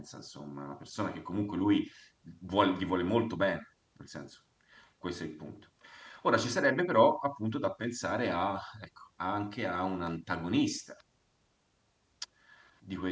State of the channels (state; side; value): identical; both; correlation 1.00